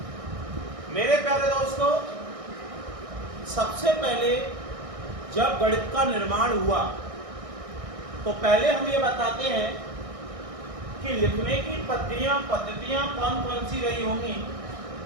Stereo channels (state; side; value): late; left; 1.6 ms